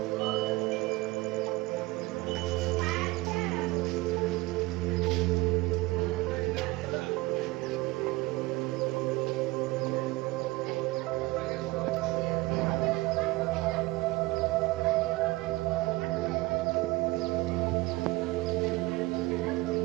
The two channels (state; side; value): quieter; left; 21.3 dB